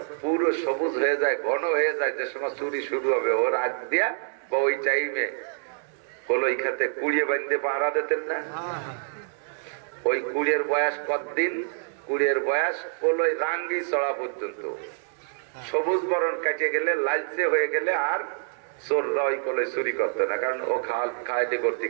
পুরো সবুজ হয়ে যায়, ঘন হয়ে যায়, যে সময় চুরি শুরু হবে ওর আগ দিয়া বা ওই টাইমে কলই খাতে কুড়িয়ে বাঁধতে পাহারা দিতেন না। ওই কুড়িয়ের বয়স কতদিন? কুড়িয়ের বয়স কলই রাঙ্গি চড়া পর্যন্ত। সবুজ বরণ কাটে গেলে, লালচে হয়ে গেলে আর চোররা ওই কলই চুরি করতো না, কারণ ও খাইতে করতে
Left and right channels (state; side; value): silent; left; digital silence